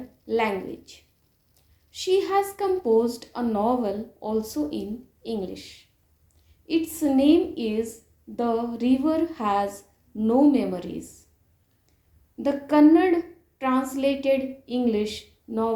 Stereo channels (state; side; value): identical; both; correlation 1.00